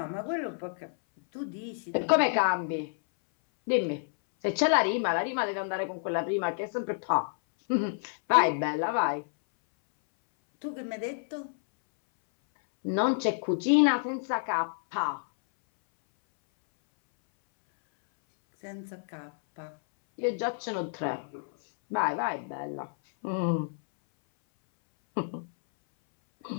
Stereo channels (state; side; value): silent; right; 58 dB below the other